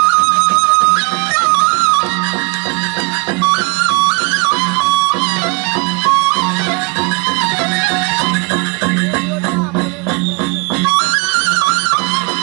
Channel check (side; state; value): left; quieter; 32.9 dB